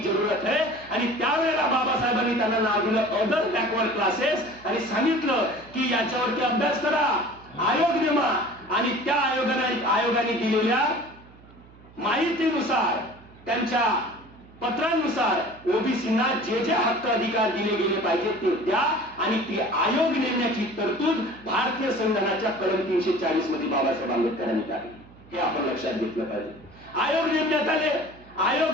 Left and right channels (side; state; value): right; noise; hum, 23 dB below the sound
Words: है. आणि त्यावेळेला बाबासाहेबांनी त्यांना नाव दिलं अदर बॅकवर्ड क्लासेस आणि सांगितलं की याच्यावरती अभ्यास करा, आयोग नेमा आणि त्या आयोगाने दिलेल्या माहितीनुसार, त्यांच्या पत्रानुसार ओबीसींना जे जे हक्क अधिकार दिले गेले पाहिजे ते द्या आणि ती आयोग नेमण्याची तरतूद भारतीय संविधानाच्या कलम 340 मध्ये बाबासाहेब आंबेडकरांनी टाकली. हे आपण लक्षात घेतलं पाहिजे. आयोग नेमण्यात आले, आयोग